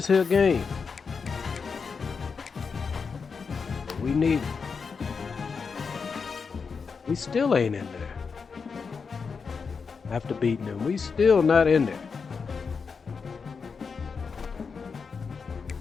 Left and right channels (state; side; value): quieter; right; 5.4 dB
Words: here game. But we need it. We still ain't in there. After beating them, we still not in there.